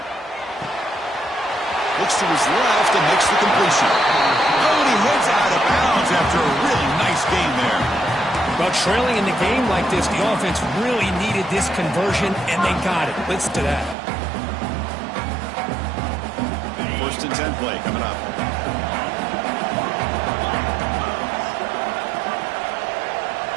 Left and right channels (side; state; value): left; drops out; at 14.0 s